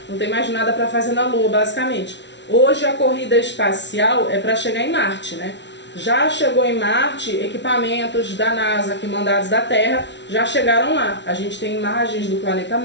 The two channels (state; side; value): late; right; 0.51 ms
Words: não tem mais nada para fazer na Lua, basicamente. Hoje a corrida espacial é para chegar em Marte, né? Já chegou em Marte, equipamentos da NASA que mandados da Terra já chegaram lá. A gente tem imagens do planeta